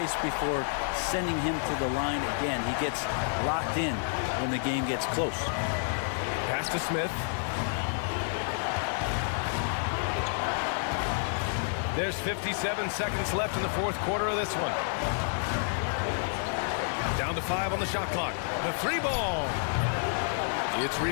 before sending him to the line again. He gets locked in when the game gets close. Pass to Smith. There's 57 seconds left in the 4th quarter of this one. Down to 5 on the shot clock. The 3 ball. It's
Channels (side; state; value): right; silent; digital silence